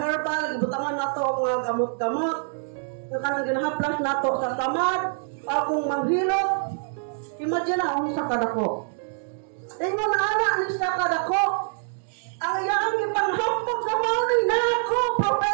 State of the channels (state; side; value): silent; left; digital silence